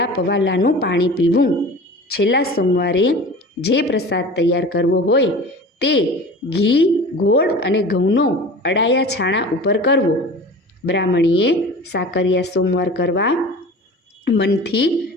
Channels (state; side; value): normal; both; correlation 0.38